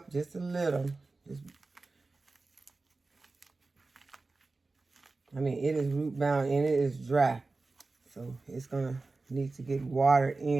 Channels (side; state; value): left; quieter; 3.6 dB